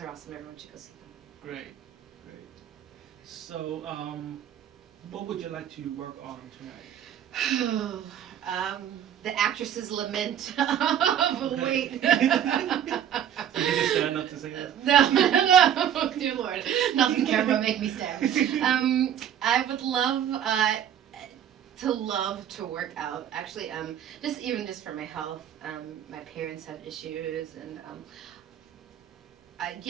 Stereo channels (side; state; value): left; quieter; 9.9 dB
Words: awesome. Everyone should go see them. Great. So, what would you like to work on tonight? The actress's lament of weight. Did you just stand up to say that? No, dear Lord, nothing camera make me stand. I would love to work out. Actually, just for my health. My parents have issues, and